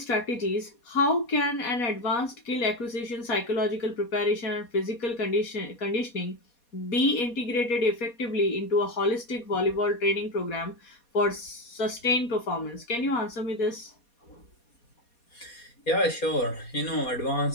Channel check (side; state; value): right; late; 4.2 ms